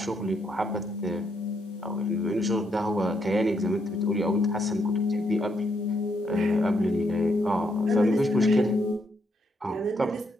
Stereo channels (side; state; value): both; normal; correlation 0.76